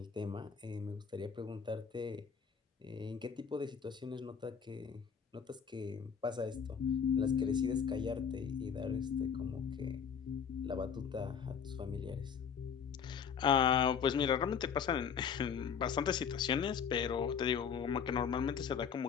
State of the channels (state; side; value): quieter; right; 7.0 dB